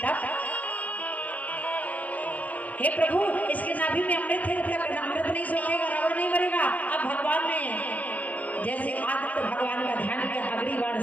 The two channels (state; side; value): late; right; 0.075 ms